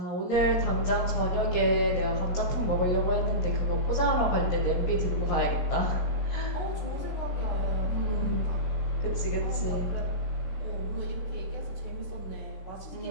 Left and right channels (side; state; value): right; late; 17 ms